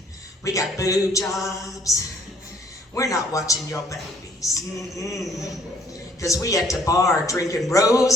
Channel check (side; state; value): both; normal; correlation 0.61